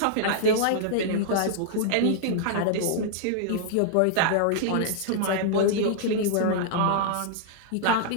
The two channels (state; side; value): different; both; correlation -0.01